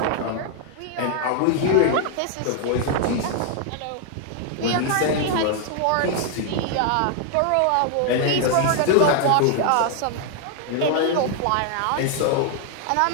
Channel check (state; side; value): different; both; correlation 0.00